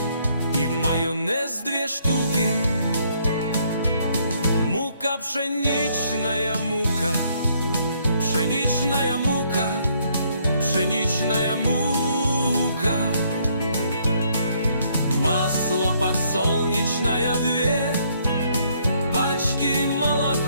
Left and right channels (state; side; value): inverted; both; correlation -0.68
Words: и майонез 2 штуки. Мука, пшеничная мука, пшеничная мука, пшеничная мука. Масло подсолнечное 2 пачки,